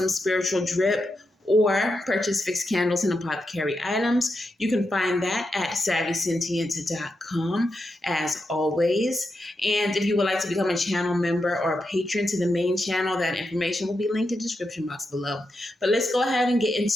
spiritual drip or purchase fixed candles and apothecary items. You can find that at savvysentient.com as always. And if you would like to become a channel member or a patron to the main channel, that information will be linked in the description box below. But let's go ahead and get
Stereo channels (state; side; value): normal; both; correlation 0.86